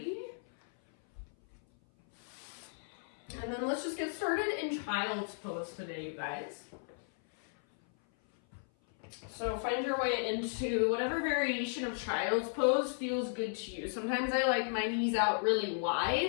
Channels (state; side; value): silent; right; 55 dB below the other